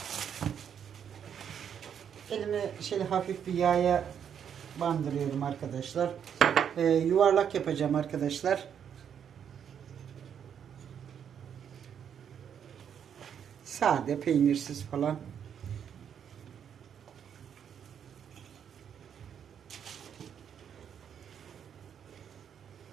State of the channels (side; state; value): left; quieter; 8.3 dB